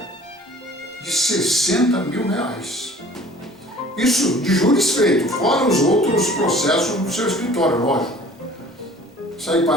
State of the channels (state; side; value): normal; both; correlation 0.49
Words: de R$60.000. Isso de júris feitos, fora os outros processos do seu escritório, lógico. Isso aí